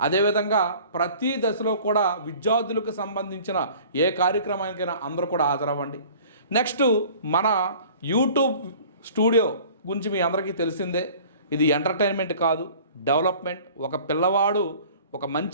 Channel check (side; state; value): both; inverted; correlation -0.47